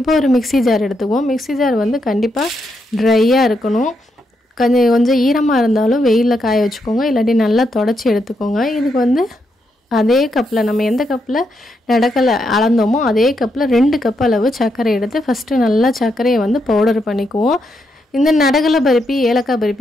ஒரு மிக்ஸி ஜார் எடுத்துக்குவோம். மிக்ஸி ஜார் கண்டிப்பா ட்ரையா இருக்கணும். கொஞ்சம் ஈரமா இருந்தாலும் வெயில்ல காய வச்சுக்கோங்க. இல்லாட்டி நல்லா தொடச்சி எடுத்துக்கோங்க. இதுக்கு அதே கப்ல நம்ம எந்த கப்ல நடக்கல அளந்தோமோ அதே கப்ல 2 கப் அளவு சர்க்கரை எடுத்து ஃபர்ஸ்ட் நல்லா சர்க்கரையை பவுடர் பண்ணிக்குவோம். இந்த நடக்கல பருப்பி ஏலக்காய்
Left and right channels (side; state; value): both; normal; correlation 0.81